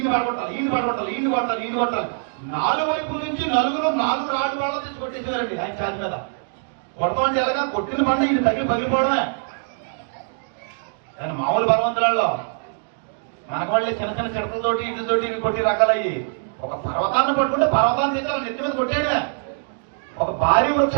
పడగొట్టాలి, ఈయన్ని పడగొట్టాలి, ఈయన్ని కొట్టాలి, ఈయన్ని కొట్టాలి. 4 వైపుల నుంచి 4 రాళ్ళు వాళ్ళ తెచ్చి కొట్టేసేవారండి ఆయన ఛాతి మీద. కొడతామంటే ఎలాగా కొట్టిన పంట ఈయన పగిలిపోవడమే. కానీ మామూలు బలవంతులలో మనకు వాళ్ళే చిన్న చిన్న చిడతలతోటి ఇటుతోటి ఇవి కొట్టి రకాలయ్యి. ఒక పర్వతాన్ని పట్టుకుంటే పర్వతాన్ని తెచ్చాలి నెత్తి మీద కొట్టేయడమే. ఒక భారీ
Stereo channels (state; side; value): silent; left; digital silence